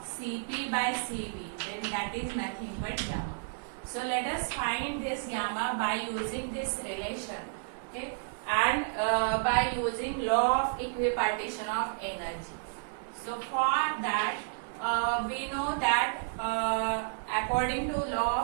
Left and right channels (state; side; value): silent; left; 57 dB below the other